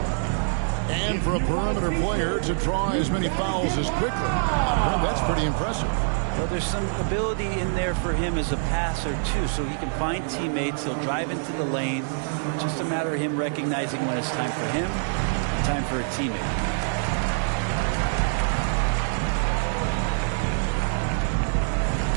And for a perimeter player to draw as many fouls as Quickly, that's pretty impressive. Well, there's some ability in there for him as a passer, too, so he can find teammates. He'll drive into the lane. It's just a matter of him recognizing when it's time for him and time for a teammate.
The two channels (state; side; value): silent; left; 62 dB below the other